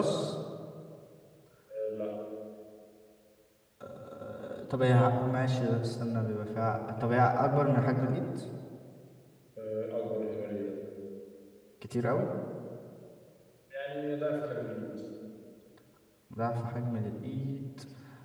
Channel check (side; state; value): both; identical; correlation 1.00